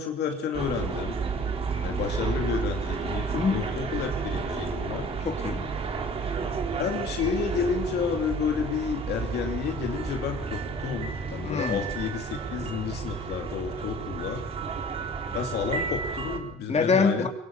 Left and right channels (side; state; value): both; normal; correlation 0.47